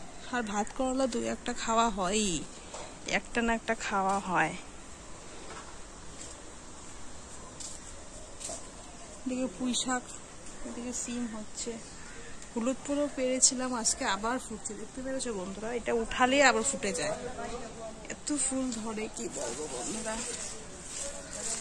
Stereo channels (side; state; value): both; identical; correlation 1.00